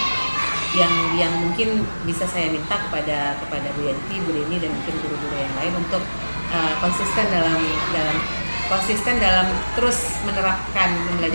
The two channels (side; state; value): both; inverted; correlation -1.00